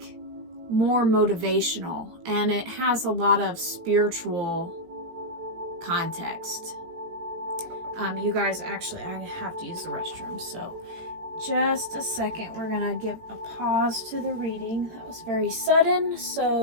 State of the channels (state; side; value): late; left; 18 ms